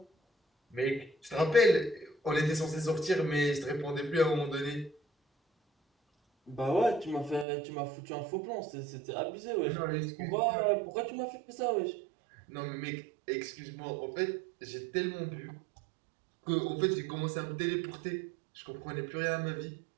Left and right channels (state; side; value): drops out; left; at 7.5 s